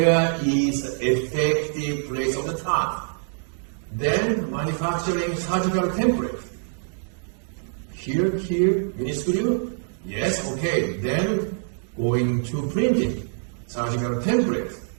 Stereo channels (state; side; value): silent; left; digital silence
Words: is the effective place of the tongue? Then manufacturing surgical template. Here, minuscule. Yes, okay. Then going to printing, surgical template.